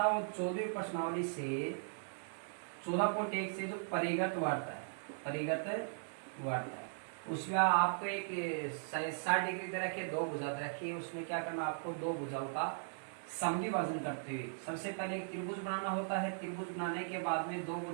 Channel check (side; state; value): left; silent; digital silence